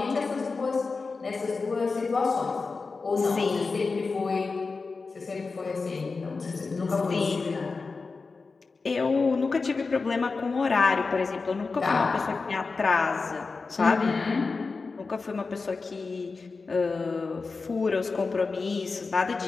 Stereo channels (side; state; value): right; quieter; 4.3 dB